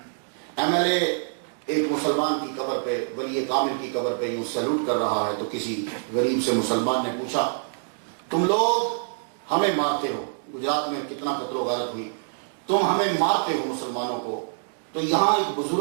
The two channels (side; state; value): left; silent; digital silence